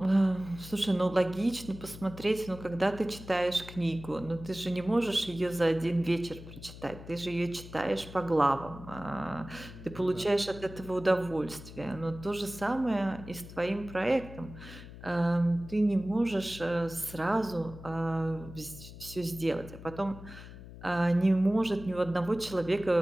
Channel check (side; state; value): left; noise; hum, 15 dB below the sound